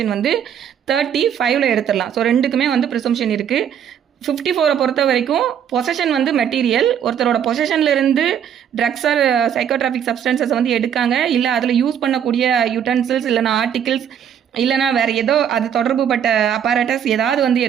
வந்து 35ல் எடுத்துடலாம். ஸோ ரெண்டுக்குமே வந்து ப்ரிசம்ஷன் இருக்குது. 54 பொறுத்த வரைக்கும் பொசஷன் வந்து மெட்டீரியல், ஒருத்தரோட பொசஷன்ல இருந்து ட்ரக்ஸ் ஆர் சைக்கோட்ராஃபிக் சப்ஸ்டன்சஸ் வந்து எடுக்காங்க, இல்லை அதில் யூஸ் பண்ணக்கூடிய யூட்டன்சில்ஸ் இல்லைனா ஆர்டிகிள்ஸ் இல்லைனா வேறு ஏதோ அது தொடர்புபட்ட அப்பாரட்டஸ் ஏதாவது வந்து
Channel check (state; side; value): quieter; left; 8.9 dB